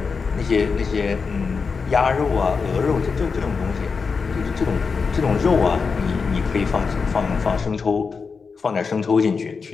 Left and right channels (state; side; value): quieter; right; 5.1 dB